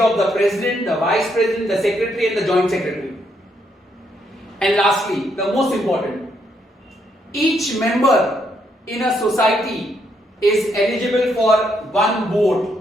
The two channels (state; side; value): normal; both; correlation 0.75